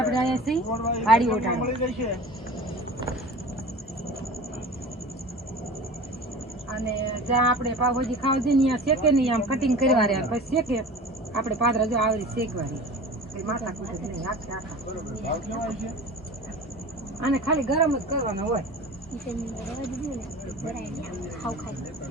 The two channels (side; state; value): both; normal; correlation 0.37